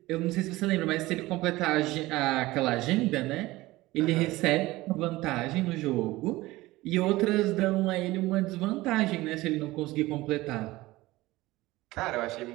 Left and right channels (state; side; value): quieter; left; 18.9 dB